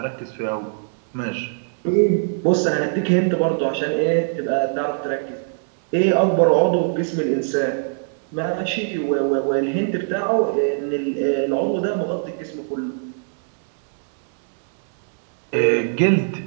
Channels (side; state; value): left; silent; 63 dB below the other